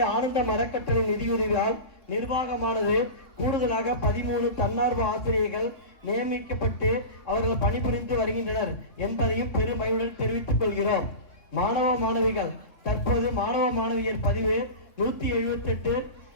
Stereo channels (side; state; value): right; late; 3.6 ms